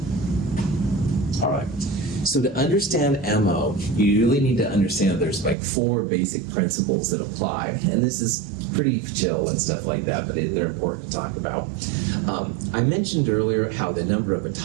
All right. So to understand MO, you really need to understand there's like 4 basic principles that apply. And this is pretty chill and stuff like that, but they're important to talk about. I mentioned earlier how the number of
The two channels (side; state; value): left; drops out; at 5.6 s